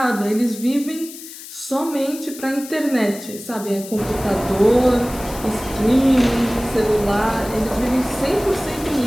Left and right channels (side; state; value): left; noise; hiss, 14 dB below the sound